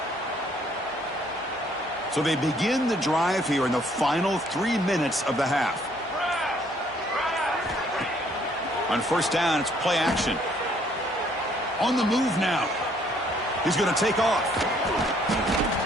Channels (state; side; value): normal; both; correlation 0.64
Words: So they begin the drive here in the final 3 minutes of the half. On first down, it's play action. On the move now. He's going to take off.